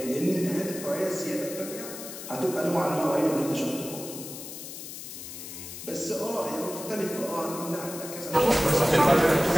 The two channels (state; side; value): noise; left; hiss, 10 dB below the sound